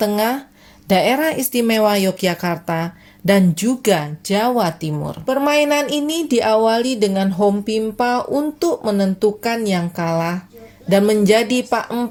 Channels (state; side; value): identical; both; correlation 1.00